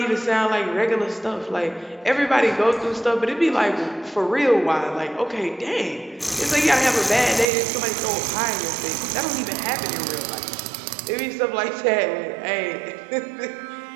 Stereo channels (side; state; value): left; drops out; at 7.5 s